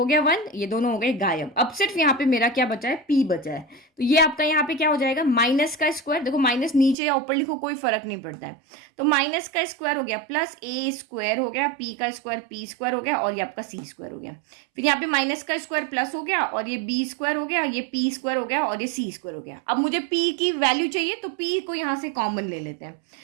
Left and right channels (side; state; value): left; drops out; at 7.0 s